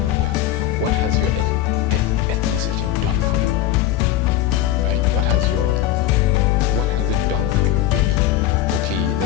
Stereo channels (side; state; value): right; quieter; 12.1 dB